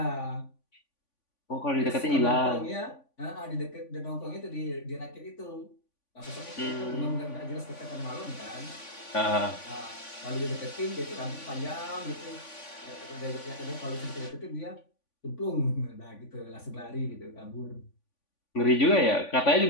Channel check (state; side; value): late; right; 3.5 ms